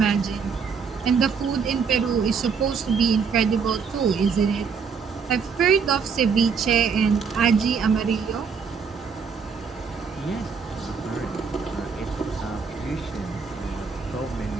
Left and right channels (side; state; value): left; quieter; 5.8 dB